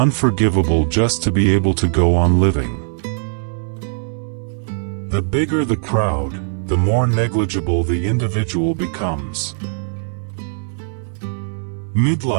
just to be able to go on living. The bigger the crowd, the more negligible the individual becomes.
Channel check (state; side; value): silent; left; digital silence